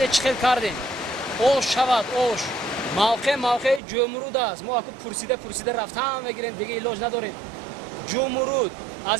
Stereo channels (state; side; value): drops out; left; at 3.8 s